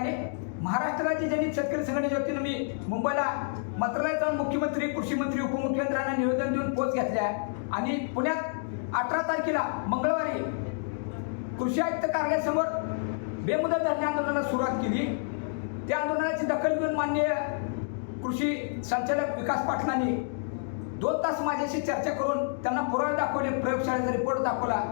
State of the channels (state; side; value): silent; right; digital silence